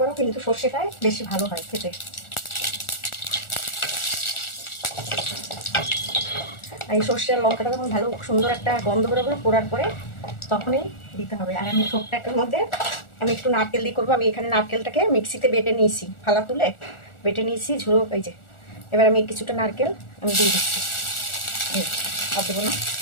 কিন্তু সর্ষেটাই বেশি ভালো হয় খেতে। আর এই সর্ষে আর লঙ্কাটা যখন ভালো সুন্দর একটা গন্ধ বেরোবে পোড়ার পরে, তখনই দিতে হবে। আর আমি থোরটার মধ্যে আমি একটু নারকেল দিয়ে করবো। আমি এখানে নারকেলটাকে মিক্সিতে বেটে নিয়েছি, ফালা তুলে বেটে নিয়েছি ঝুড়ো এই যে। এবার আমি কিছুটা নারকেল আমি দিয়ে দিচ্ছি। আর দেবো না,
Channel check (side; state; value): right; late; 1.4 ms